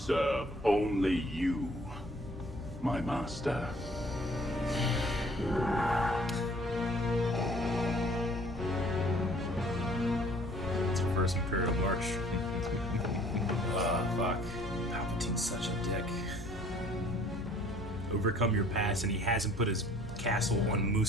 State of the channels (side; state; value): both; normal; correlation 0.55